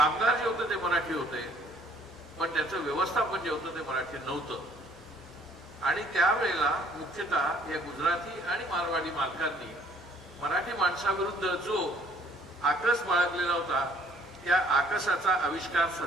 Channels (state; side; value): normal; both; correlation 0.61